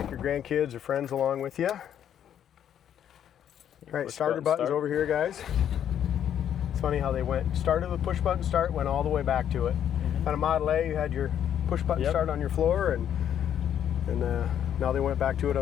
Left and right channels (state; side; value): quieter; right; 9.7 dB